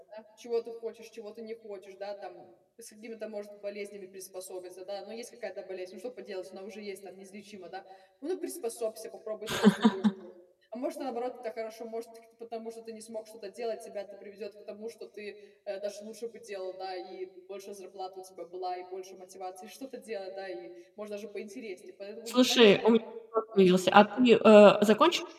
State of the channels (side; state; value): both; identical; correlation 1.00